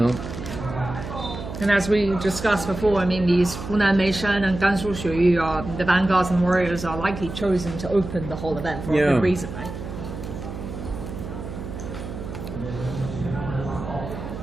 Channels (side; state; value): right; noise; hum, 9 dB below the sound